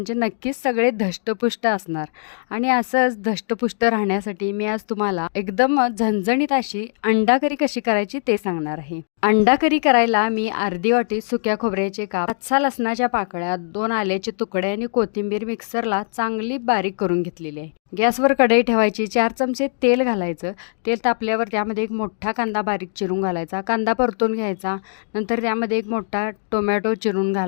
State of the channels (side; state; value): right; silent; digital silence